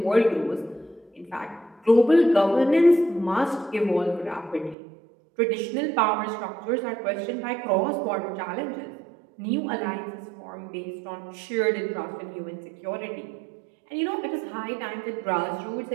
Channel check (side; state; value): left; drops out; at 4.8 s